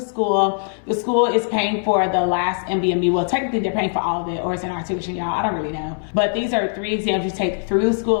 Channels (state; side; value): silent; right; 60 dB below the other